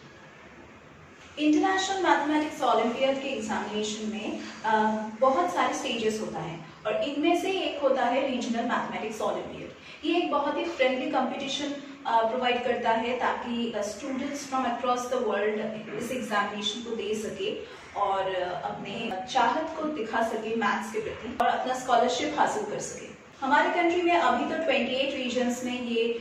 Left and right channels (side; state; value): both; identical; correlation 1.00